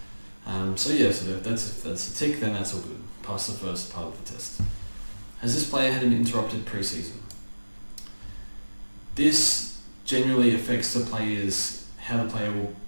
So if that's a tick, then that's all good. Pass the first part of the test. Has this player had an interrupted preseason? This generally affects how the player will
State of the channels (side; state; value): both; inverted; correlation -1.00